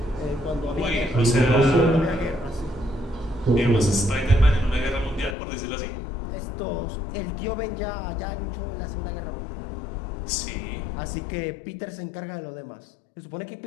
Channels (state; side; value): drops out; right; at 5.4 s